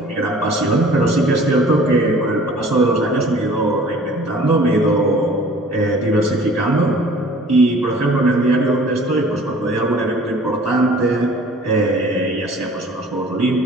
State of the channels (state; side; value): normal; both; correlation 0.49